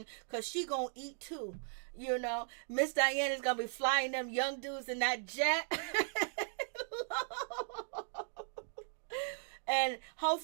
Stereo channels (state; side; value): silent; left; digital silence